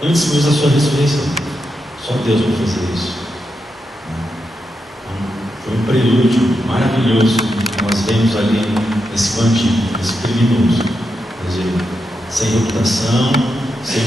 antes mesmo da sua ressurreição. Só Deus pode fazer isso. Então, foi um prelúdio maravilhoso que nós vemos ali nesse bandido, nesse criminoso. Quer dizer, sem reputação, sem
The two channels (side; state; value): both; normal; correlation 0.86